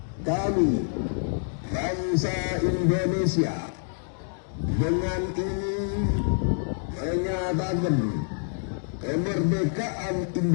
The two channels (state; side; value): silent; right; digital silence